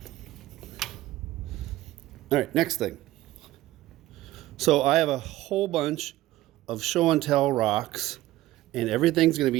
All right, next thing. So I have a whole bunch of show and tell rocks, and everything's going to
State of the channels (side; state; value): left; quieter; 16.0 dB